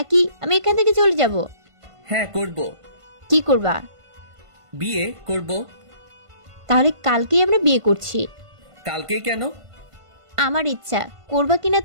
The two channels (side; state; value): left; late; 1.5 ms